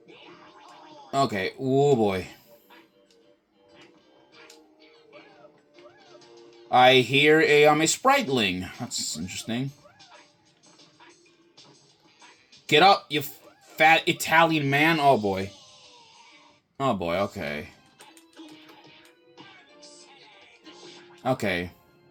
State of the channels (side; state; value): both; identical; correlation 1.00